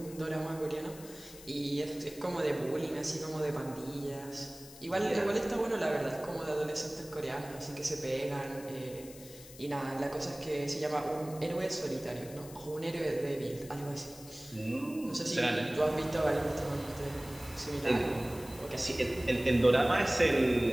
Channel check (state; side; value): noise; left; hiss, 17 dB below the sound